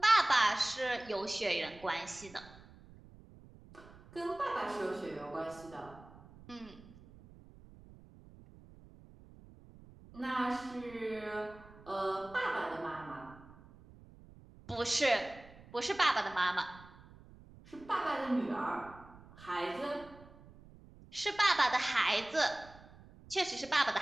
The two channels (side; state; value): right; noise; rumble, 21 dB below the sound